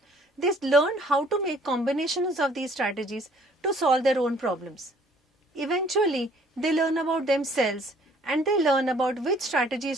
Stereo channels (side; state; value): both; normal; correlation 0.58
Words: they learn how to make combinations of these strategies to solve their own problems. Eventually, they learn about themselves and they learn about which